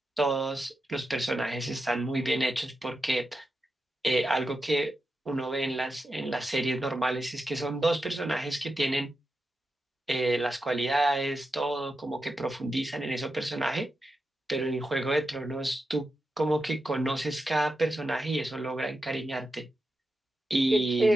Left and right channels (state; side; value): normal; both; correlation 0.89